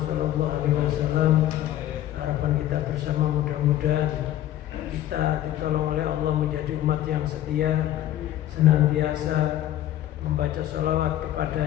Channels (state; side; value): quieter; right; 13.0 dB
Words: SAW. Harapan kita bersama mudah-mudahan kita ditolong oleh Allah menjadi umat yang setia, senantiasa membaca sholawat